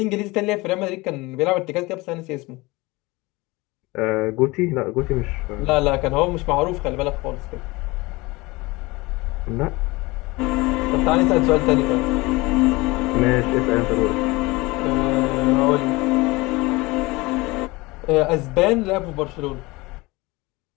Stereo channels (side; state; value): right; quieter; 22.7 dB